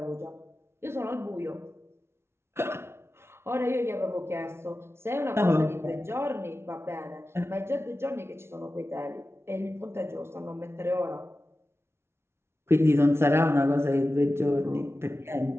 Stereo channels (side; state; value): left; late; 0.12 ms